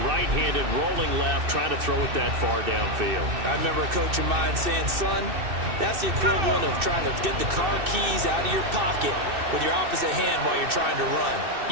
right-handed, rolling left, trying to throw it that far downfield. I remember a coach of mine saying, son, that's the equivalent of trying to get the car keys out of your pocket with your opposite hand while you're trying to run.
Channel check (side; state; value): left; late; 2.6 ms